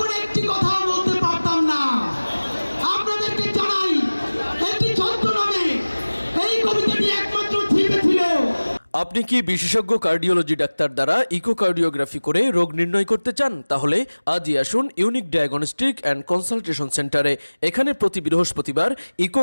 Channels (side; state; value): both; inverted; correlation -1.00